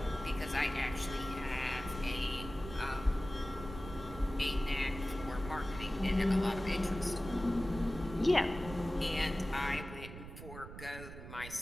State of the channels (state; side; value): noise; right; rumble, 12 dB below the sound